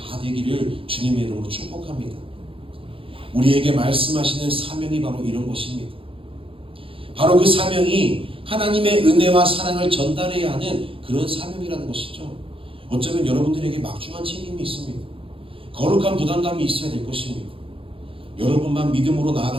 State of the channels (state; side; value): late; left; 0.26 ms